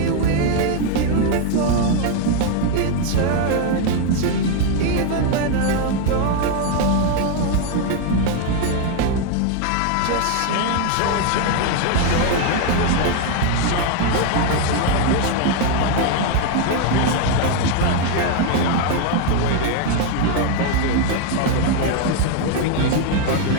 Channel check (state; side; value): different; both; correlation 0.01